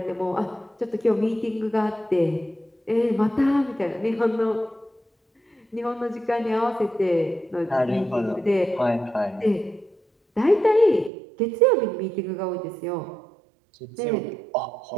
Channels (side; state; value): left; drops out; at 11.1 s